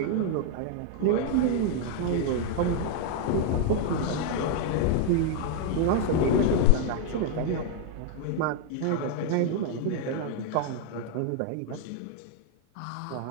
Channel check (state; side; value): different; both; correlation 0.00